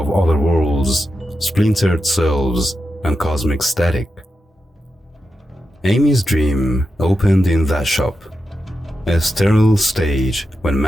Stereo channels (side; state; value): both; normal; correlation 0.88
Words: other worlds, splintered selves, and cosmic static. Amy's dream opened in that shop, a sterile stage when